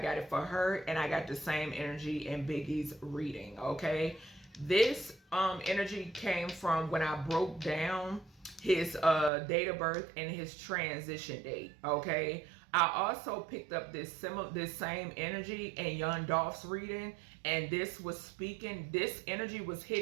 it for her, and I got the same energy in Biggie's reading. Okay, this energy came from when I broke down his date of birth and his transition date. Okay, I also picked up this same energy in Young Dolph's reading, and this was speaking. This energy was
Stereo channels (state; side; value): drops out; left; at 9.3 s